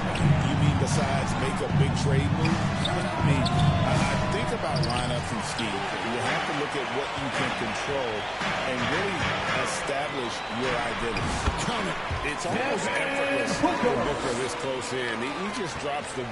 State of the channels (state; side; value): identical; both; correlation 1.00